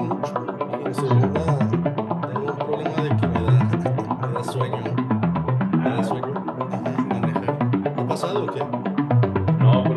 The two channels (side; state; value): both; identical; correlation 1.00